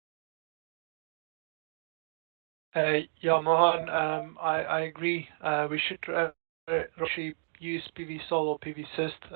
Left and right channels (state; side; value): silent; left; digital silence